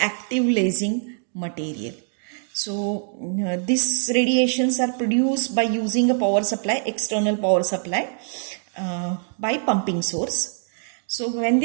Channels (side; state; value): left; silent; digital silence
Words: active lasing material. So these radiations are produced by using a power supply, external power supply, by pumping source. So when